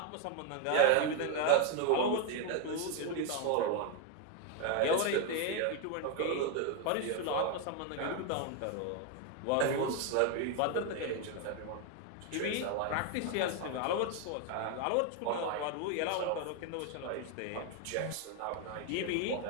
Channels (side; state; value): both; different; correlation 0.01